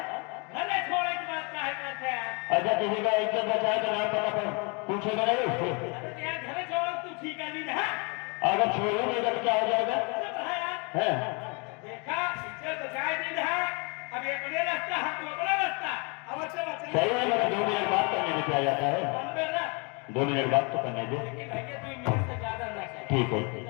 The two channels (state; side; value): quieter; right; 32.2 dB